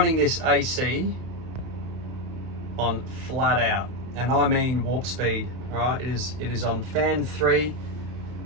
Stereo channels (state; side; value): late; left; 32 ms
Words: this AC on flat out, and I mean warp speed, all right? It is on fan 3,